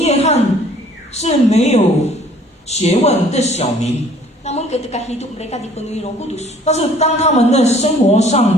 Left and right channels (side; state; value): both; normal; correlation 0.55